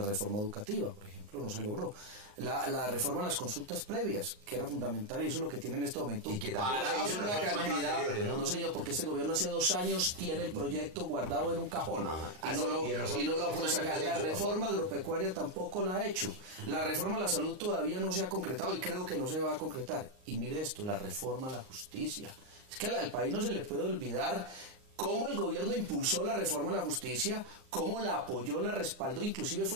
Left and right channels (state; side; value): late; left; 38 ms